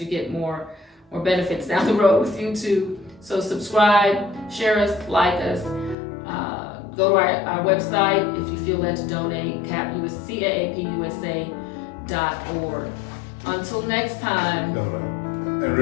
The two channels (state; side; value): drops out; right; at 6.0 s